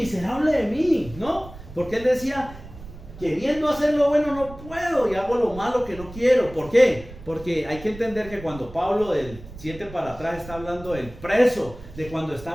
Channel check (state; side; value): noise; right; rumble, 16 dB below the sound